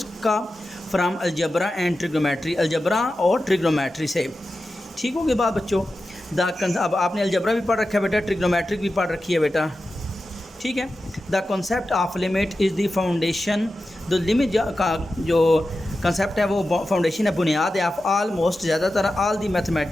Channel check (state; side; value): normal; both; correlation 0.92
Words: का from algebra and trigonometry, algebra और ट्रिग्नोमेट्री से। ठीक हो गई बात बच्चों। अब आपने अलजबरा भी पढ़ रखा है बेटा, ट्रिग्नोमेट्रिक भी पढ़ रखी है बेटा। ठीक है, the concept of limit is the foundation, the limit का जो कंसेप्ट है वो फाउंडेशन है, बुनियाद है ऑफ ऑलमोस्ट ज़्यादातर ऑल दी